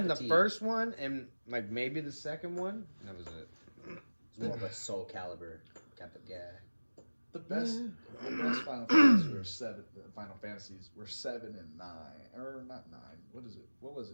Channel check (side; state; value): both; inverted; correlation -1.00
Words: cup the of tea. first one and like maybe the second one. And that was it. It's more of a Soul Calibur type of guy. the best Final Fantasies were seven. Final Fantasies were 7 and 9, or not 9. What is it? What was